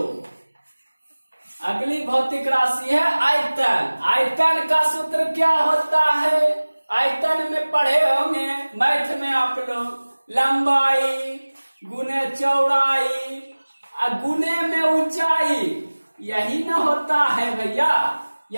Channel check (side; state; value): both; inverted; correlation -1.00